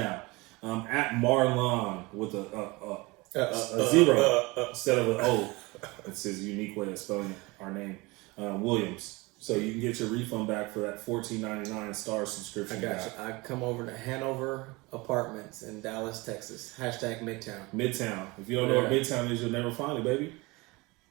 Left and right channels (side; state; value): left; quieter; 24.1 dB